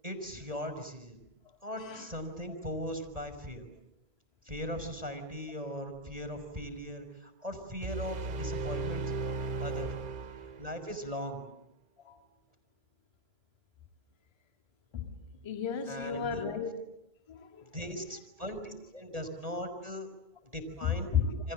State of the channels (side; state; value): left; late; 1.8 ms